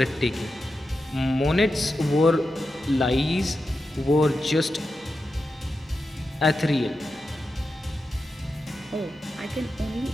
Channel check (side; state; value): both; normal; correlation 0.90